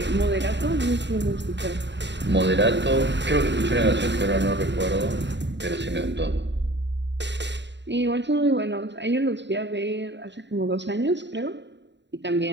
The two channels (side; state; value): left; late; 0.52 ms